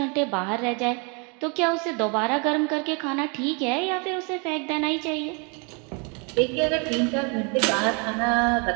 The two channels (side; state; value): left; quieter; 33.7 dB